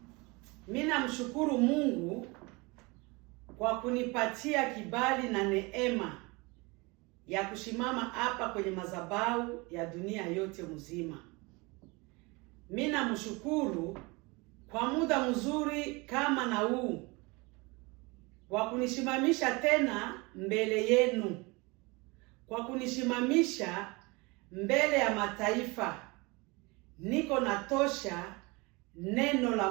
Mimi namshukuru Mungu kwa kunipatia kibali na neema ya kusimama hapa kwenye madhabahu ya dunia yote mzima. Mimi namshukuru kwa muda mzuri kama na huu kwa kunisimamisha tena mbele yenu, kwa kunisimamisha mbele ya mataifa. Niko natosha neno la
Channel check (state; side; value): quieter; left; 25.9 dB